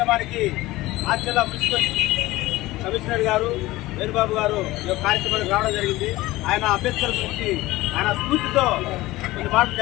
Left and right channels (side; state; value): right; quieter; 18.5 dB